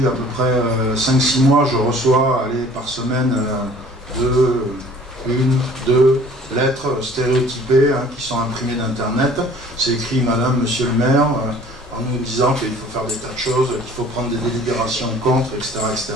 à peu près 5-6 mois, je reçois par semaine deux lettres stéréotypées qui sont imprimées d'internet. C'est écrit Madame, Monsieur le maire, en nous disant qu'il faut faire des tas de choses, qu'il faut prendre des délibérations contre, etc. etc.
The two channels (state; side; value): normal; both; correlation 0.51